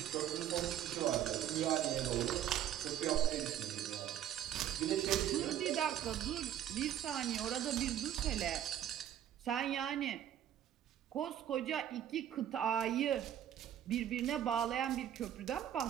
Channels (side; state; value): left; quieter; 11.0 dB